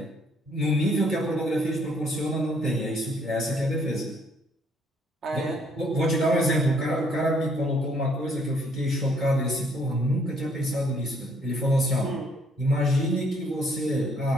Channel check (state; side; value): normal; both; correlation 0.65